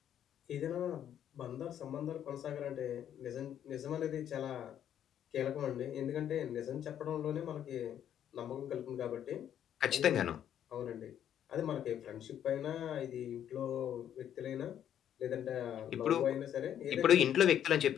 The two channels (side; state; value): right; quieter; 10.1 dB